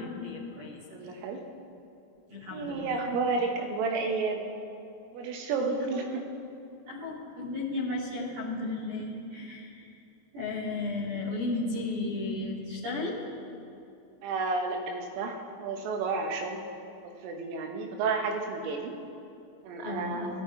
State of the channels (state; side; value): late; left; 21 ms